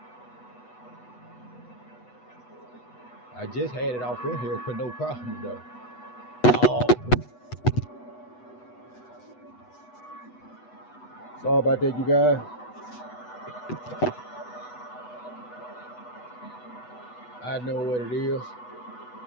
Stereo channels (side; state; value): right; late; 8.1 ms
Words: I just had it off in here for no problem though. Oh. Sorry about that, you guys. I know what it is.